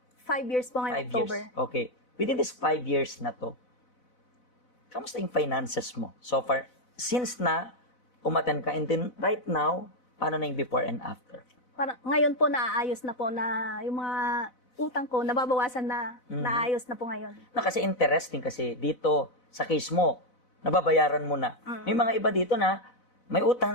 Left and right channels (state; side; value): late; right; 4.0 ms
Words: 5 years po ngayon, 5 October. years. Okay. Within this 5 years na to, kamusta yung finances mo? So far, since na umaten ka, and then right now, paano na yung before and after? Parang, ngayon po, naaayos na po na yung mga utang ko, nababawasan na, naayos na po ngayon. Kasi interesting kasi dito, sa case mo, nababayaran mo na. May mga iba dito na may utang